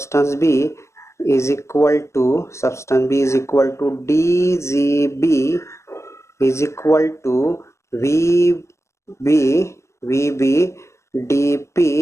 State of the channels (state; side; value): late; right; 0.14 ms